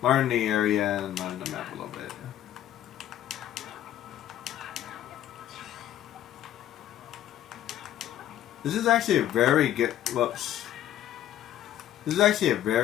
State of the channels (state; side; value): quieter; right; 12.1 dB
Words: learn the area and learn the map a little bit. This is actually a very good, whoops. This is actually a